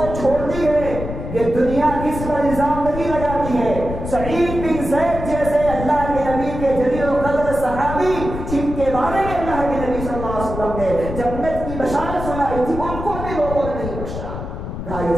چھوڑتی ہے؟ یہ دنیا کس پر الزام نہیں لگاتی ہے؟ سعید بن زید جیسے اللہ کے نبی کے جلیل القدر صحابی، جن کے بارے میں اللہ کے نبی صلی اللہ علیہ وسلم نے جنت کی بشارت سنائی تھی، ان کو بھی لوگوں نے نہیں بخشا۔ کہا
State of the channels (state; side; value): noise; left; rumble, 7 dB below the sound